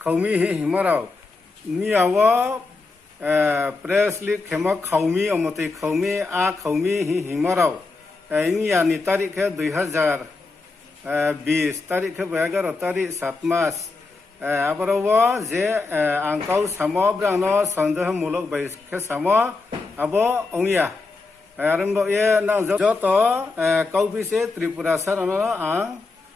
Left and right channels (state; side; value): quieter; right; 3.8 dB